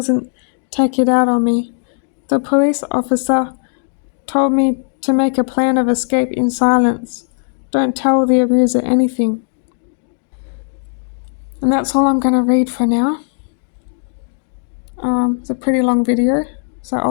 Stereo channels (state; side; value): silent; right; digital silence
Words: take it out on me. The police officer told me to make a plan of escape in silence. Don't tell the abuser anything. And that's all I'm going to read for now. It's a pretty long video, so